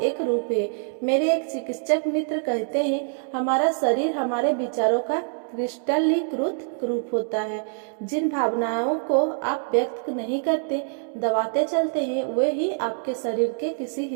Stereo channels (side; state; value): left; silent; digital silence